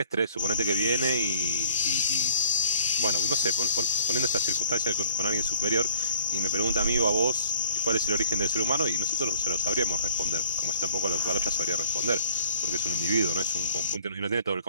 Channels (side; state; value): both; inverted; correlation -0.53